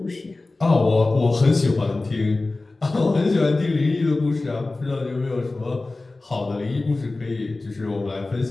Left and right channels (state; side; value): quieter; right; 3.2 dB